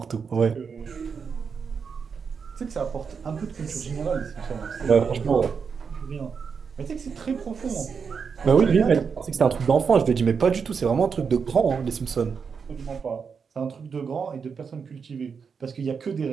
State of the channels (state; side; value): quieter; left; 6.0 dB